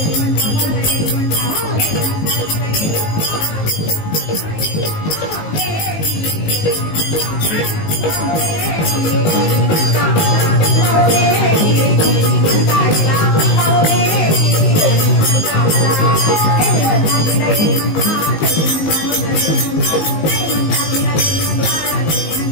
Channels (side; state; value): right; late; 19 ms